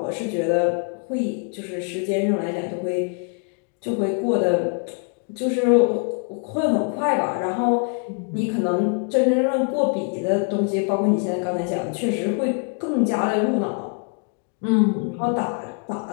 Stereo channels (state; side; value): quieter; right; 39.7 dB